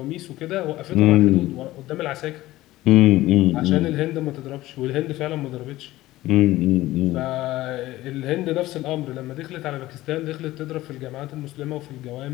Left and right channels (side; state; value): right; quieter; 16.7 dB